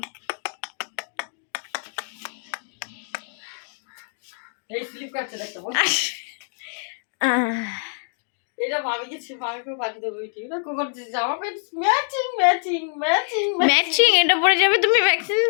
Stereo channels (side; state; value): right; silent; digital silence